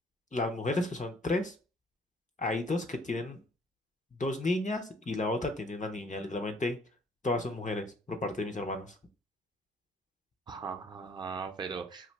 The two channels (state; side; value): normal; both; correlation 0.61